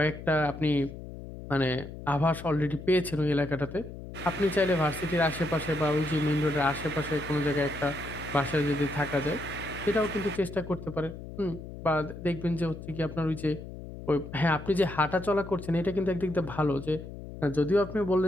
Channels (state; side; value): noise; left; hum, 12 dB below the sound